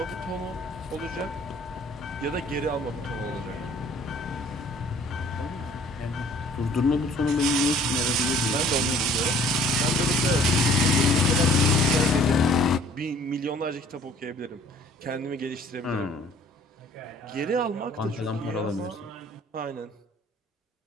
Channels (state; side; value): normal; both; correlation 0.55